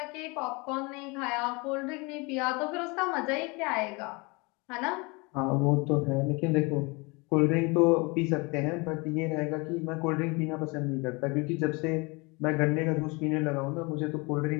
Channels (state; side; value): quieter; right; 27.6 dB